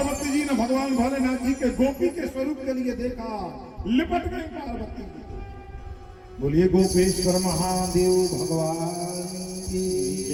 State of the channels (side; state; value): both; identical; correlation 1.00